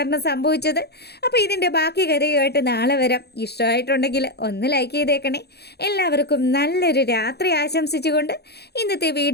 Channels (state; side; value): late; right; 0.48 ms